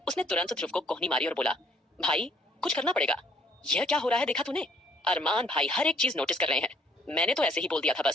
उसने तुरंत ध्रुव को कोहनी मारी और बोला, भाई कुछ करना पड़ेगा। यह क्या हो रहा है, देखा तूने? अरमान भाई हर एक चीज नोटिस कर रहे हैं। मैंने तो ऐसे ही बोल दिया था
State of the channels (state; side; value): normal; both; correlation 0.62